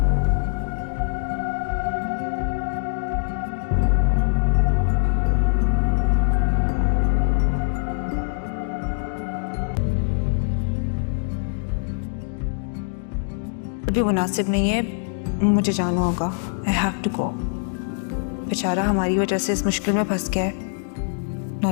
بھی مناسب نہیں ہے, مجھے جانا ہوگا. I have to go. بیچارہ ہماری وجہ سے اس مشکل میں پھنس گیا ہے, نہ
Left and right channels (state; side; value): silent; right; digital silence